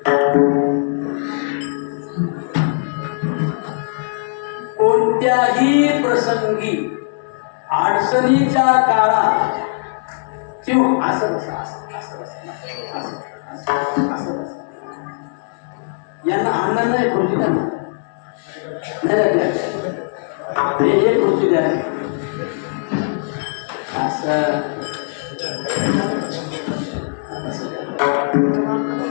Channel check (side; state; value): right; silent; 66 dB below the other